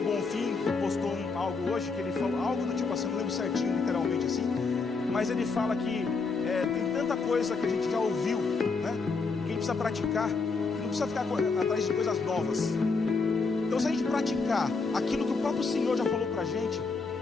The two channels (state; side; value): quieter; right; 4.3 dB